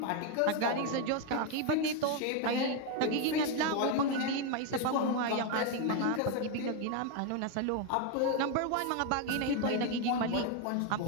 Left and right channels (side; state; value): both; different; correlation 0.01